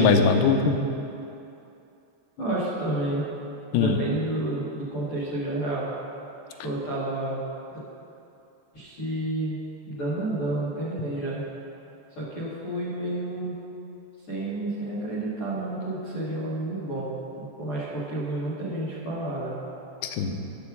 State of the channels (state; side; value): late; right; 14 ms